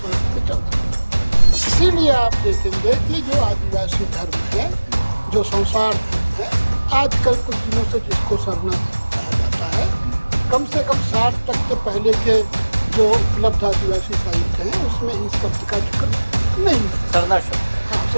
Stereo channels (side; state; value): both; inverted; correlation -1.00